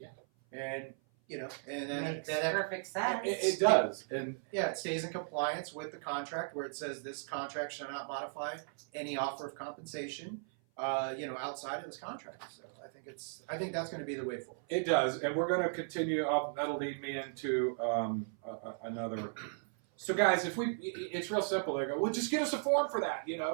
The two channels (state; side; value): silent; left; 54 dB below the other